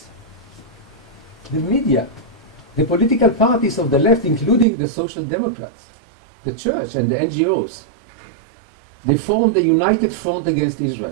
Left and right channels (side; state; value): left; drops out; at 4.7 s